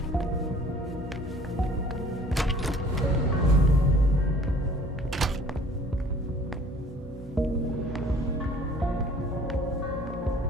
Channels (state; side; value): normal; both; correlation 0.52